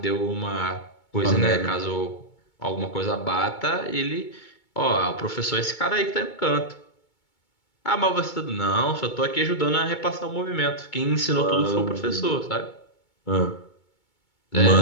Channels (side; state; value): right; late; 2.2 ms